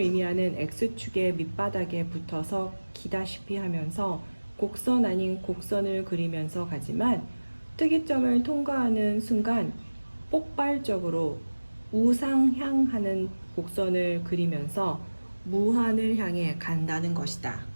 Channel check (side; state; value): both; inverted; correlation -1.00